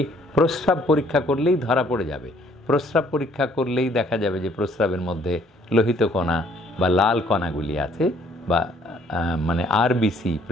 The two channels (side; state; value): both; normal; correlation 0.62